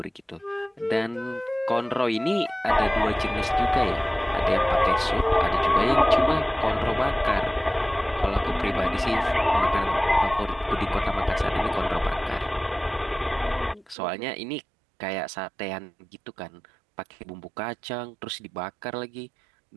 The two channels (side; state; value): left; drops out; at 14.0 s